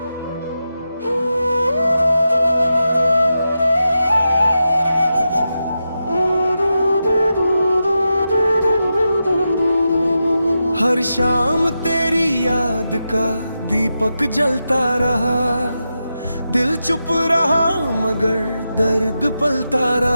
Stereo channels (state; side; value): inverted; both; correlation -0.89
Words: हर शाम तेरी याद का दीपक जलता रहा, दिल चुप रहा मगर दर्द पलता